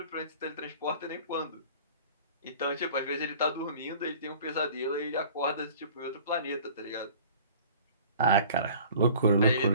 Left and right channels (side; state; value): both; inverted; correlation -0.46